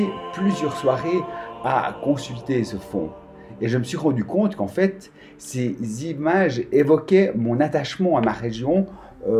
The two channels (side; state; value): both; identical; correlation 1.00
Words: plusieurs soirées à consulter ce fonds. Et je me suis rendu compte qu'en fait, ces images évoquaient mon attachement à ma région,